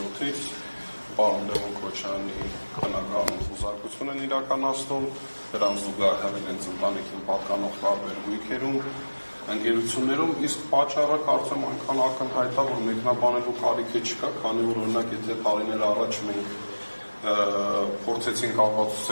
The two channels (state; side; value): inverted; both; correlation -1.00